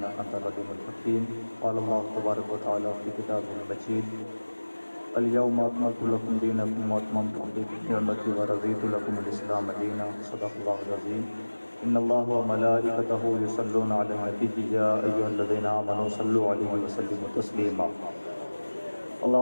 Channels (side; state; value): both; inverted; correlation -1.00